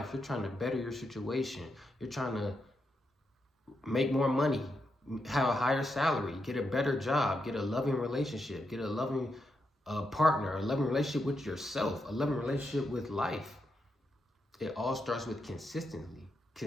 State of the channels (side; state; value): both; normal; correlation 0.83